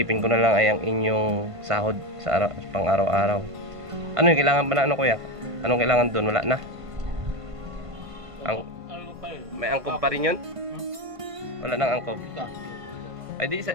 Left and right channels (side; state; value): left; late; 1.5 ms